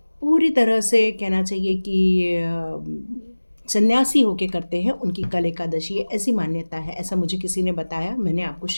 पूरी तरह से कहना चाहिए कि सन्यासी होके करते हैं, उनकी कल एकादशी है, ऐसी मान्यता है। ऐसा मुझे किसी ने बताया, मैंने आपको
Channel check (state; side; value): inverted; both; correlation -1.00